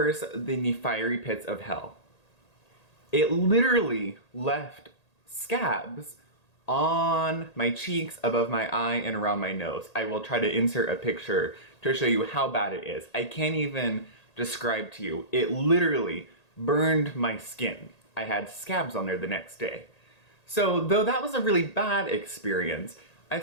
than the fiery pits of hell. It literally left scabs on my cheeks, above my eye, and around my nose. I will try to insert a picture to show you how bad it is. I can't even describe to you. It literally burned my skin. I had scabs on there the next day. So though that was a really bad experience, I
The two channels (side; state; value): right; late; 1.8 ms